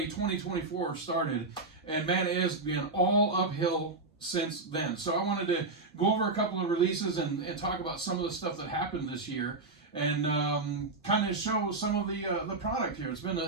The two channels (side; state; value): left; quieter; 3.4 dB